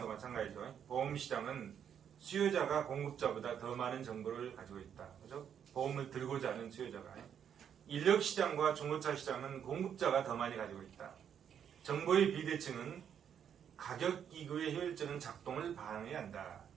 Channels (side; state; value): left; quieter; 8.5 dB